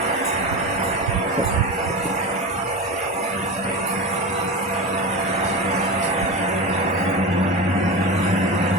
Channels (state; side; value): normal; both; correlation 0.24